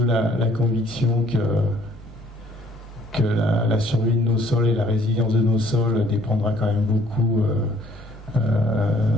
la conviction que la survie de nos sols et la résilience de nos sols dépendra quand même beaucoup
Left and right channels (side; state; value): left; noise; rumble, 25 dB below the sound